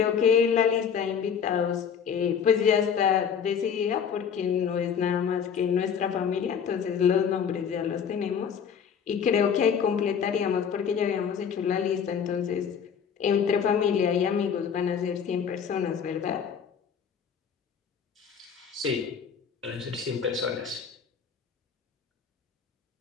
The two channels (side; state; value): right; quieter; 7.2 dB